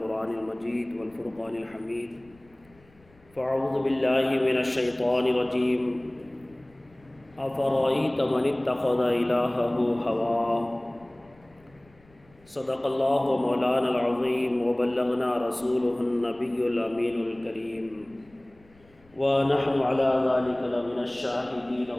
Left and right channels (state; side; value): noise; left; rumble, 29 dB below the sound